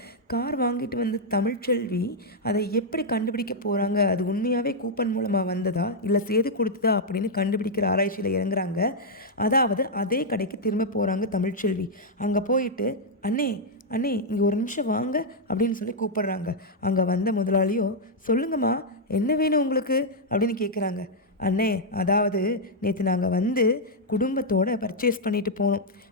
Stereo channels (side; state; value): both; normal; correlation -0.03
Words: கார் வாங்கிட்டு வந்த தமிழ்ச்செல்வி அதை எப்படி கண்டுபிடிக்க போகிறாங்க, அது உண்மையாகவே கூப்பன் மூலமாக வந்ததா இல்லை சேது கொடுத்ததா அப்படின்னு கண்டுபிடிக்கிற ஆராய்ச்சியில் இறங்குறாங்க. அதாவது அதே கடைக்கு திரும்ப போகிறாங்க தமிழ்ச்செல்வி. அங்கே போயிட்டு அண்ணே அண்ணே இங்கே ஒரு நிமிஷம் வாங்க அப்படின்னு சொல்லி கூப்பிடுறாங்க. அங்கே வந்த முதலாளியோ சொல்லுங்கம்மா என்ன வேணும் உங்களுக்கு அப்படின்னு கேட்குறாங்க. அண்ணே அதாவது நேற்று நாங்கள் வந்து குடும்பத்தோடு பர்ச்சேஸ் பண்ணிட்டு போனோம்.